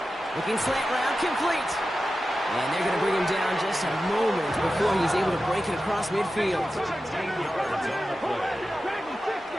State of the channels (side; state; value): both; normal; correlation 0.93